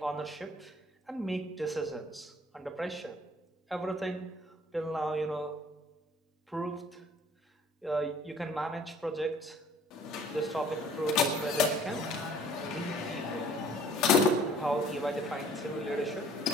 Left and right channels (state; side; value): normal; both; correlation 0.54